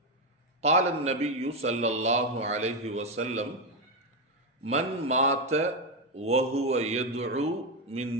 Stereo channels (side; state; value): both; normal; correlation 0.08